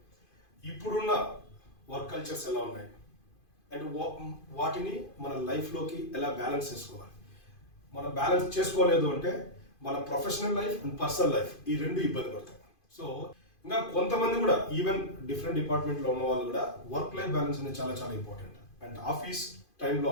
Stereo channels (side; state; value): right; late; 2.5 ms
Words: ఇప్పుడున్న వర్క్ కల్చర్స్ ఎలా ఉన్నాయి అండ్ వాటిని మన లైఫ్లోకి ఎలా బ్యాలెన్స్ చేసుకోవాలి. మనం బ్యాలెన్స్ చేసుకోలేదు అంటే మన professional life and personal life ఈ రెండు ఇబ్బంది పడతాయి. సో ఇంకా కొంతమంది కూడా ఈవెన్ డిఫరెంట్ డిపార్ట్మెంట్లో ఉన్న వాళ్ళు కూడా వర్క్ లైఫ్ బ్యాలెన్స్ అనేది చాలా చాలా ఇంపార్టెంట్. అండ్ ఆఫీస్ టైంలో